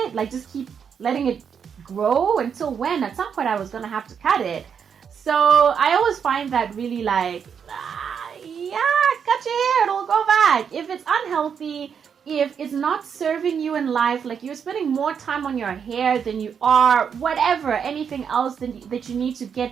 Just keep letting it grow until when? At some point I was gonna have to cut it. So I always find that really yeah, cut your hair, it'll go back. If it's unhealthy, if it's not serving you in life, you're spending more time on your hair than you are whatever, anything else that you need to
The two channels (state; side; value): quieter; left; 7.2 dB